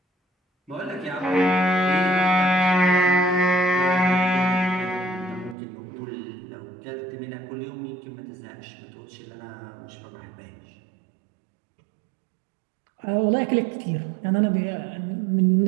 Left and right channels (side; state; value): left; drops out; at 5.6 s